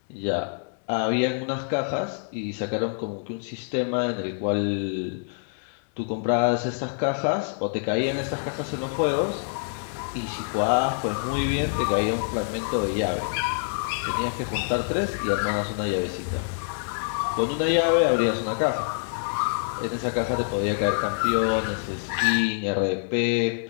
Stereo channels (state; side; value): silent; right; digital silence